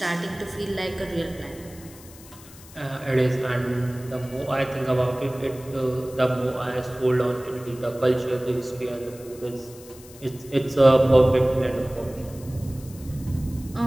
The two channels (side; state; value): left; noise; hiss, 20 dB below the sound